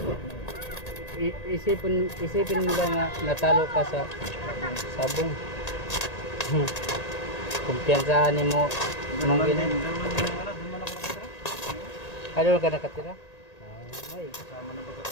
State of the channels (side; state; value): right; late; 1.8 ms